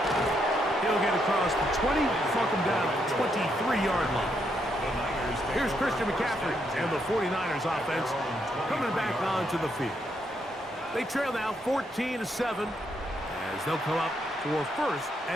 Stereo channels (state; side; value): normal; both; correlation 0.77